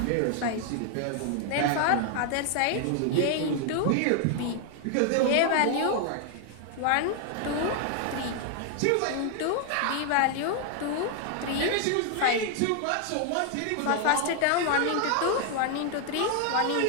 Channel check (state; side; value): different; both; correlation 0.00